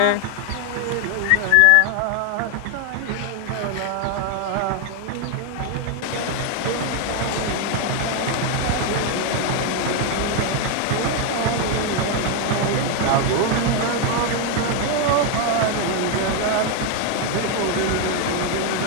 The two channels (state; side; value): different; both; correlation 0.01